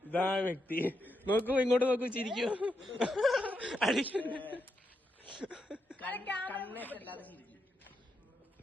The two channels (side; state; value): both; normal; correlation 0.83